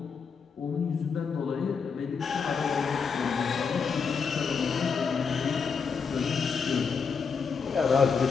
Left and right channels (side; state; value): right; quieter; 5.7 dB